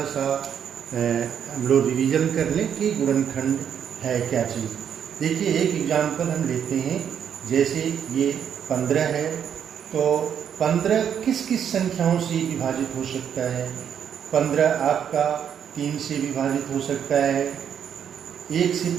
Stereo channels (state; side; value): quieter; left; 8.5 dB